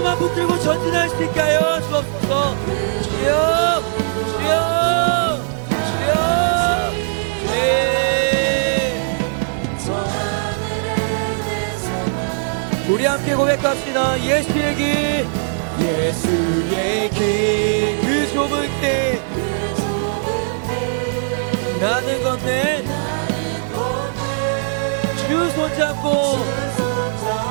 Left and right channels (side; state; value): left; silent; digital silence